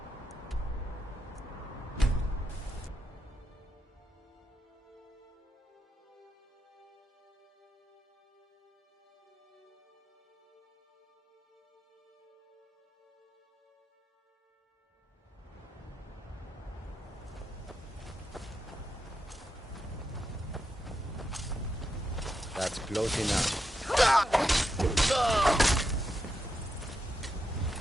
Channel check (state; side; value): normal; both; correlation 0.85